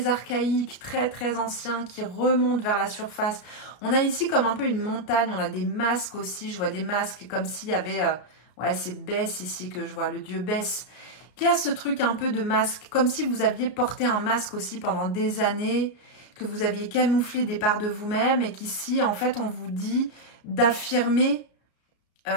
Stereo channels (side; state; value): right; late; 34 ms